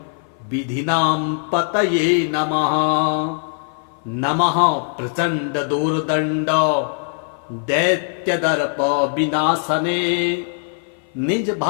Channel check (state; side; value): silent; right; 58 dB below the other